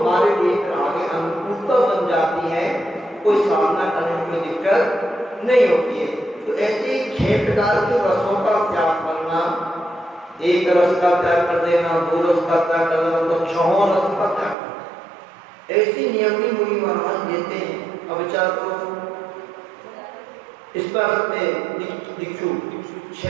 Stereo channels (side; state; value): left; drops out; at 14.6 s